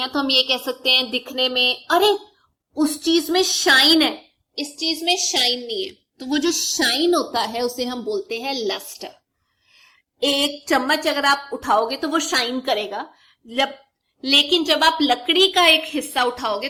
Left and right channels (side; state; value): both; identical; correlation 1.00